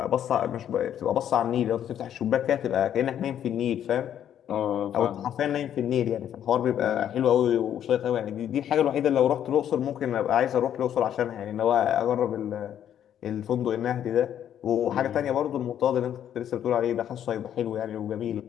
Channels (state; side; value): quieter; right; 10.1 dB